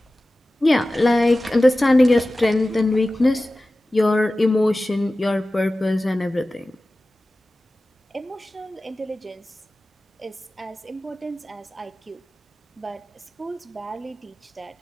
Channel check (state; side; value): normal; both; correlation 0.96